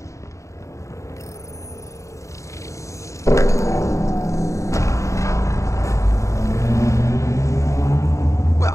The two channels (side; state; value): right; late; 0.15 ms